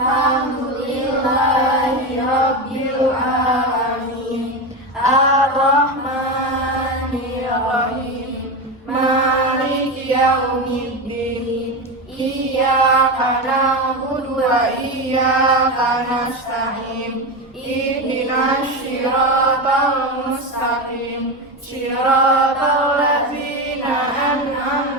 alamin. Ar-Rahmanirrahim. Maliki yaumiddin. Iyyaka na'budu wa iyyaka nasta'in. Ihdinas siratal mustaqim. Siratal ladzina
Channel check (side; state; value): both; normal; correlation 0.17